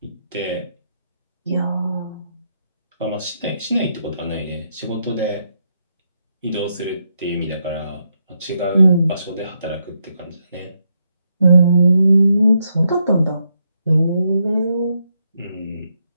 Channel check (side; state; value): both; inverted; correlation -0.79